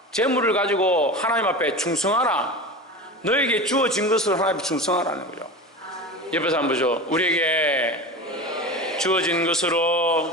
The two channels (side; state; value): both; normal; correlation 0.29